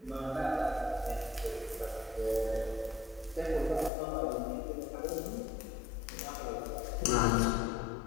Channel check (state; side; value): drops out; right; at 3.9 s